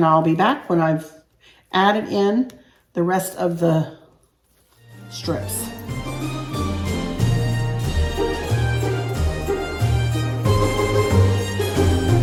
I'll be back when I've added in the rest of the strips.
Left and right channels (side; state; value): both; identical; correlation 1.00